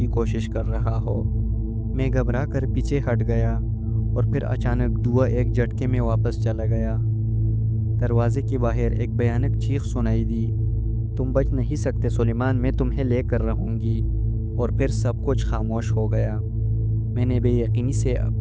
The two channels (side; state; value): both; identical; correlation 1.00